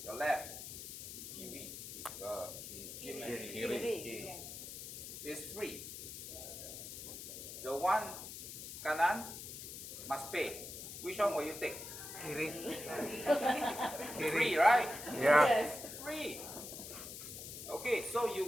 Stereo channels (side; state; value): left; noise; hiss, 9 dB below the sound